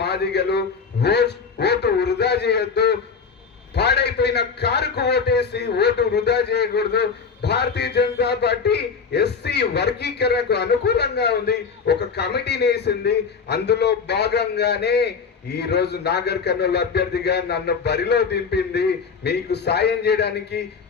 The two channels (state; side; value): quieter; right; 5.6 dB